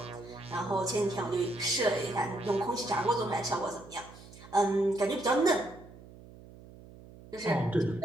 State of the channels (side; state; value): right; noise; hum, 19 dB below the sound